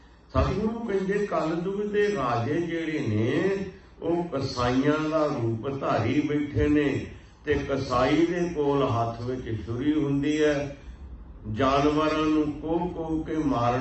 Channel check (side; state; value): both; identical; correlation 1.00